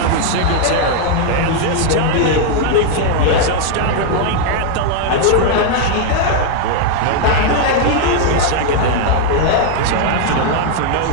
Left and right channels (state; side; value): different; both; correlation 0.00